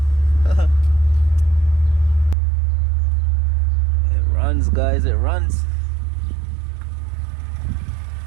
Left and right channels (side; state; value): left; drops out; at 2.4 s